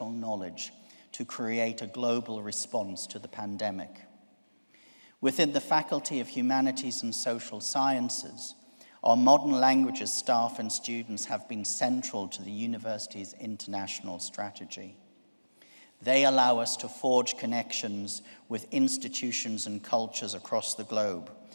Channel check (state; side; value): inverted; both; correlation -1.00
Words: knowledge to create a global response to the pandemic. Within the Faculty of Humanities and Social Sciences, our modern languages staff and students have been central to the university's international strategy. They allow us to forge connections with institutions and cultures across the globe,